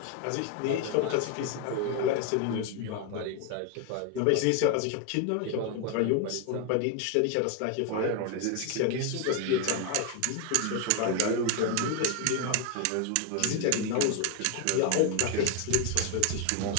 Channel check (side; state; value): both; different; correlation 0.01